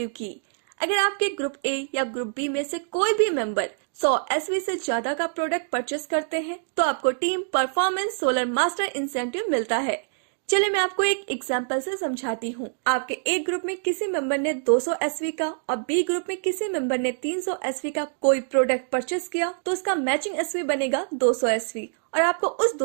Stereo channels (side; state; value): left; silent; digital silence